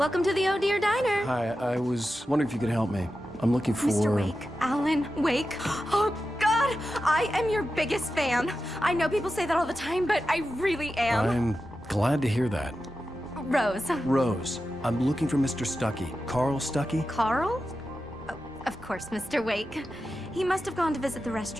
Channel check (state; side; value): normal; both; correlation 0.91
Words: to the Oh Dear Diner. Hi, I was wondering if you could help me. I'm looking for... Mr. Wake, Alan Wake. Oh, God, I am your biggest fan. I know people say that all the time, but I really am. I'm glad to hear that. Rose. Rose, I'm looking for Mr. Stuckey. Carl Stuckey? Carl? Oh, of course, Mr. Wake. He must have gone to visit the